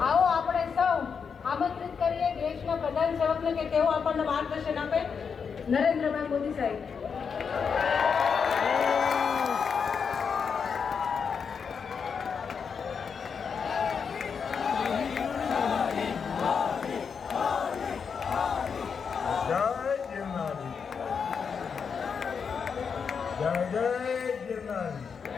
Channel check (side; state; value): right; quieter; 6.2 dB